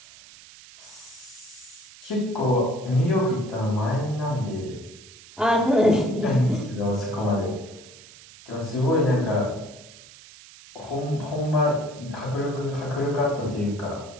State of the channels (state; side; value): noise; right; hiss, 20 dB below the sound